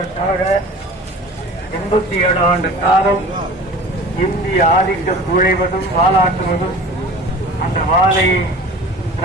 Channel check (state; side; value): normal; both; correlation 0.41